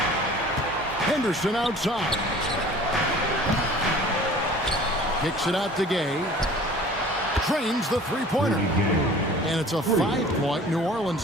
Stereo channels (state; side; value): normal; both; correlation 0.47